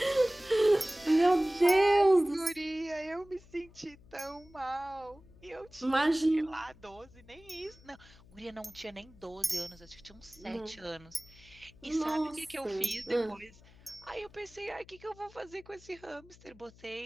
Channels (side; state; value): left; noise; hum, 24 dB below the sound